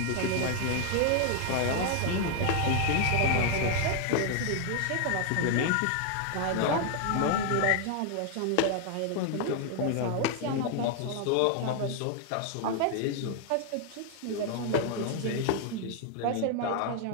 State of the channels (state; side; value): different; both; correlation 0.00